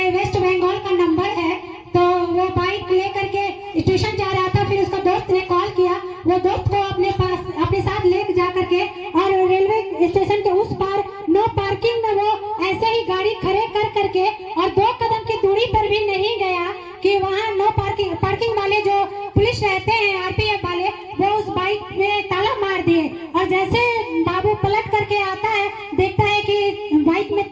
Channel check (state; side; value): identical; both; correlation 1.00